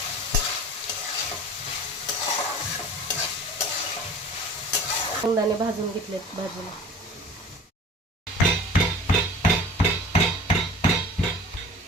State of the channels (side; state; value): both; normal; correlation 0.41